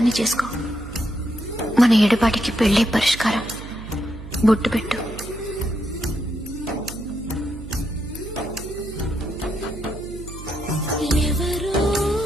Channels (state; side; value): noise; right; hum, 12 dB below the sound